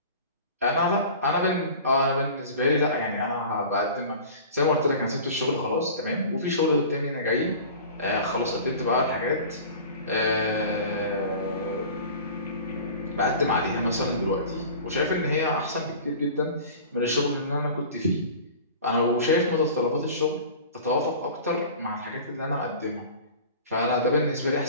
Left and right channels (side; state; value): both; inverted; correlation -0.40